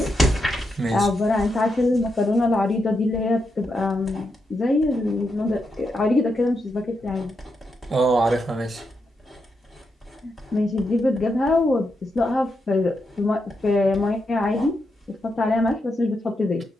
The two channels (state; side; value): normal; both; correlation 0.84